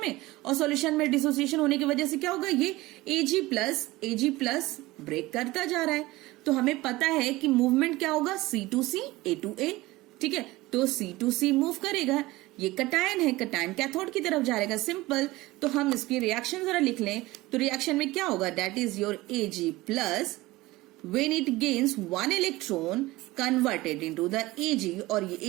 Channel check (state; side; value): quieter; left; 19.5 dB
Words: में, और सॉल्यूशन में डिसोसिएशन होने की वजह से क्या होगा, ये Ag प्लस ब्रेक करता जा रहा है। तो हमें पता है कि मूवमेंट क्या होगा, C2C A2A, ठीक है। तो C2C मूव करेगा, ये कटायन है, कटायन कैथोड की तरफ जाएगा, सिंपल। तो हम इसकी रिएक्शन जरा लिख लें, तो रिएक्शन में क्या होगा, that is your Ag plus when it gains one electron converted into the Ag, और ये